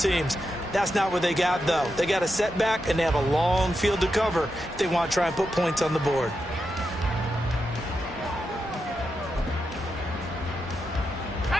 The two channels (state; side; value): normal; both; correlation 0.87